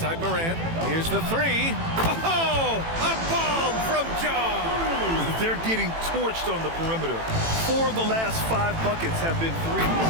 Morant. Here's the 3. Oh! A bomb from John! They're getting torched on the perimeter. 4 of the last 5 buckets have been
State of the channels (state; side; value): late; left; 18 ms